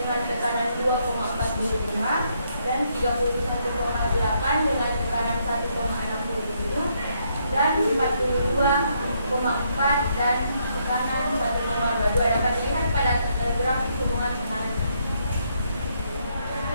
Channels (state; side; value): inverted; both; correlation -0.74